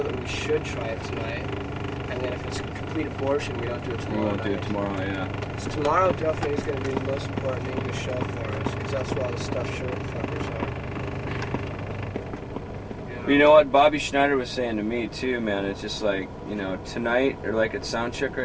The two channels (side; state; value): both; identical; correlation 1.00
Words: that we should try it tonight. And then if it's a complete abortion, we don't do it tomorrow. We won't do it tomorrow, yeah. So tomorrow definitely is going to be the most important English show for us, because that's where all the stuffed shirt fuckers are. You know what Bobby Schneider was saying to me too, man. It's just like, tonight or like at sound check